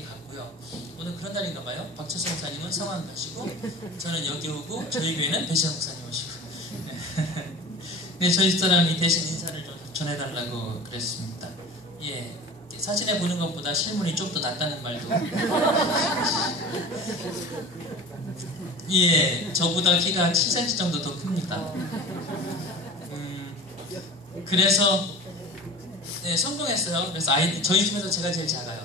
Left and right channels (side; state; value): right; noise; hum, 28 dB below the sound